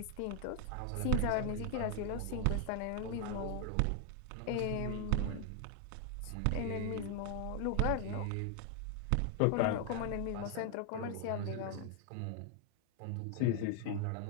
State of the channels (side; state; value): both; different; correlation 0.01